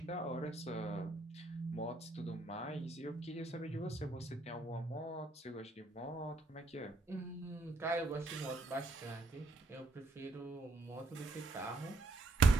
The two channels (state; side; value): quieter; left; 3.0 dB